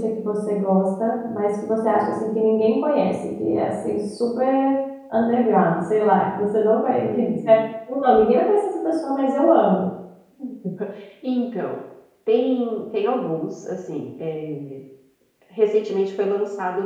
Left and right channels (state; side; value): identical; both; correlation 1.00